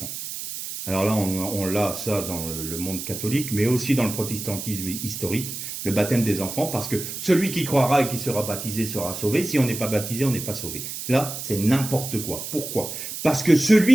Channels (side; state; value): right; noise; hiss, 7 dB below the sound